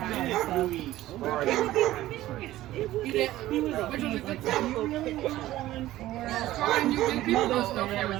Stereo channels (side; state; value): left; quieter; 15.3 dB